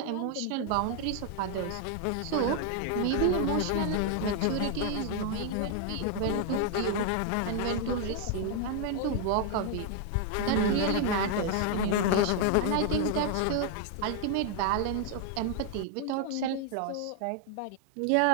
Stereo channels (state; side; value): different; both; correlation 0.00